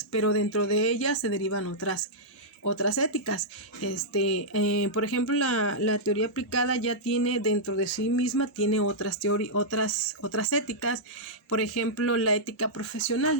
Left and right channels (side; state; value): both; normal; correlation -0.10